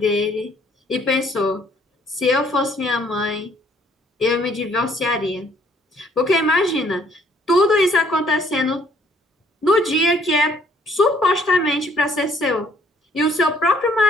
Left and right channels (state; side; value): normal; both; correlation 0.63